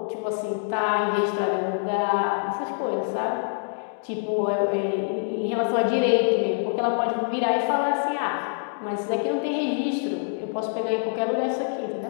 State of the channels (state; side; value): silent; right; digital silence